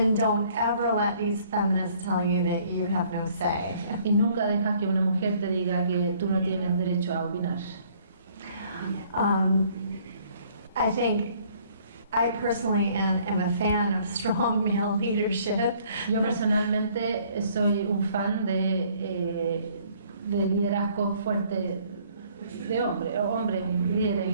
don't ever let these feminists tell you that you have no say. Y nunca dejas que una mujer te diga que tú no tienes derecho a opinar. I think I personally am a fan of strong male leadership. Yo personalmente soy un fan de liderazgo fuerte, de hombres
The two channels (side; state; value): both; inverted; correlation -0.60